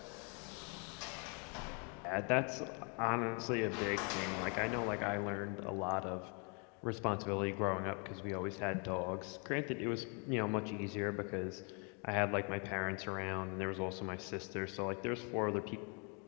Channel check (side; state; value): right; quieter; 35.7 dB